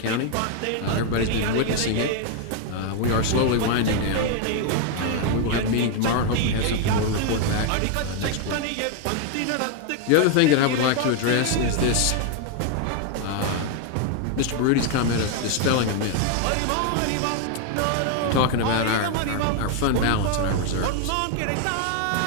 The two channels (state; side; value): different; both; correlation 0.01